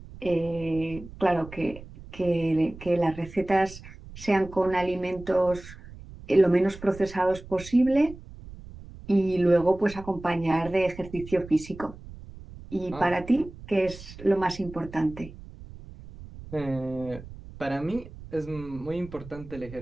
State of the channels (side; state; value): right; noise; rumble, 16 dB below the sound